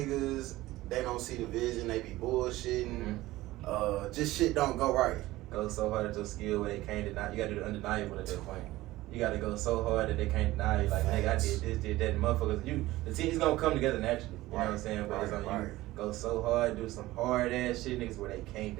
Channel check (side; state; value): left; quieter; 17.5 dB